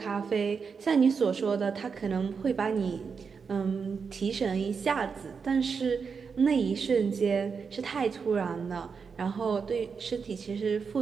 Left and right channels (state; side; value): quieter; left; 5.7 dB